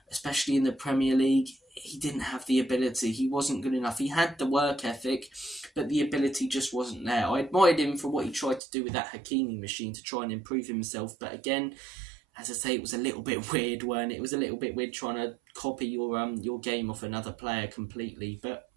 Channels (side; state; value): left; drops out; at 8.6 s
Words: especially in the Premier League. He didn't have the ability. He wasn't good enough. He had the work ethic, but the ability just wasn't there. I admired him for what he tried to do with that Hakimi machine to try and improve himself. But again, as I say, it was a little bit weird, weren't it? It was a little bit weird trying to copy your game off another player completely. But